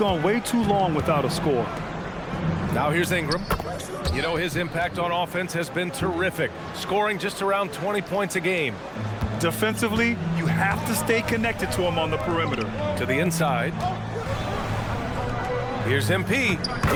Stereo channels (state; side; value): identical; both; correlation 1.00